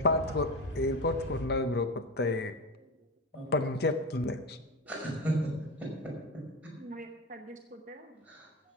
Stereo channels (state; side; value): normal; both; correlation 0.22